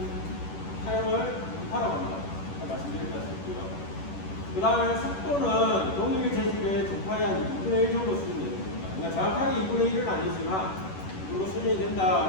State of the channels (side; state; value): right; late; 11 ms